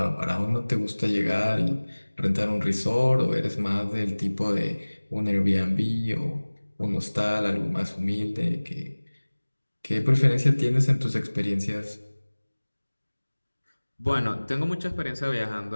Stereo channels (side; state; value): both; inverted; correlation -1.00